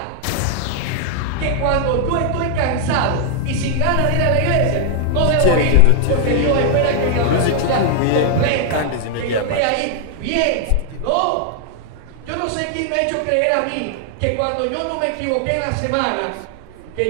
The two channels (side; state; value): both; different; correlation 0.00